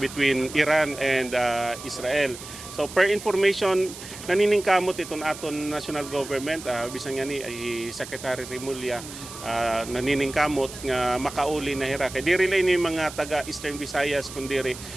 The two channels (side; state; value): right; noise; hiss, 13 dB below the sound